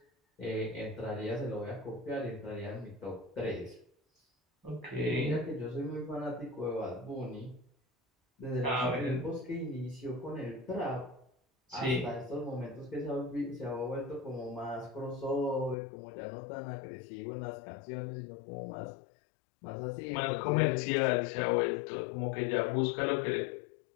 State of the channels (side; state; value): right; drops out; at 15.8 s